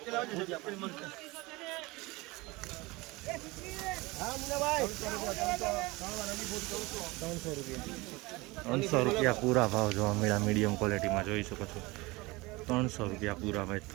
300 રૂપિયા પૂરા ભાવ જોવા મળ્યા. મીડિયમ ક્વોલિટીમાં જોઈ શકો છો. 300 રૂપિયા પૂરા ભાઈ.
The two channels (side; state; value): left; quieter; 22.9 dB